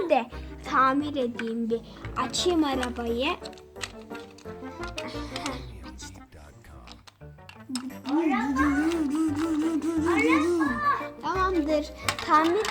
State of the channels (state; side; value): identical; both; correlation 1.00